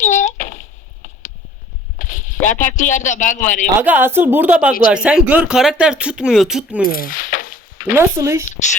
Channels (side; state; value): both; normal; correlation 0.52